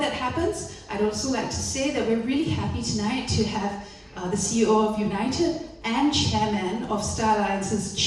happens, I'd also like to say that we're really happy tonight to have the CEO of United and Chairman of Star Alliance's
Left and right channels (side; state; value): both; identical; correlation 1.00